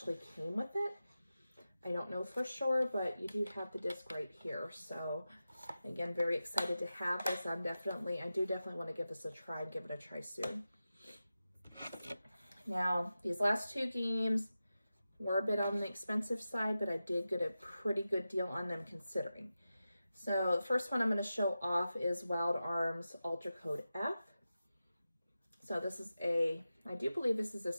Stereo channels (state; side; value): inverted; both; correlation -0.93